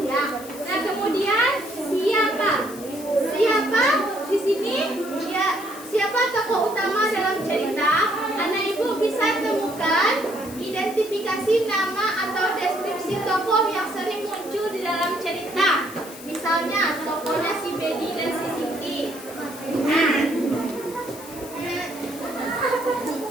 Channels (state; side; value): noise; left; hiss, 16 dB below the sound